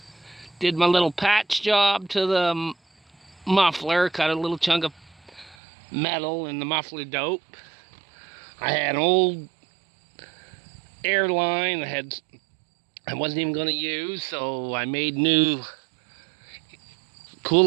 Did my little patch job to the muffler, cut a little chunk of metal in the muffler dope. I had an old airline that I wasn't even going to use, so I made new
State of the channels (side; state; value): left; drops out; at 5.6 s